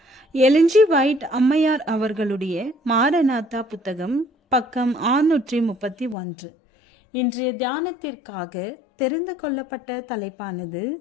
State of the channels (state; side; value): drops out; right; at 6.2 s